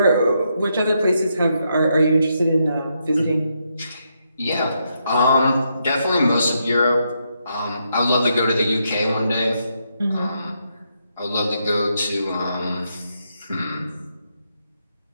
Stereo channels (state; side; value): inverted; both; correlation -0.79